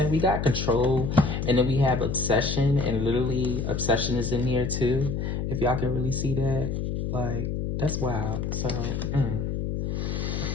we got control, and then we have obsession, and literally obsession is in here too. If y'all can really see that, like, that's wild. So,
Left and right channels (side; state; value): left; noise; hum, 2 dB below the sound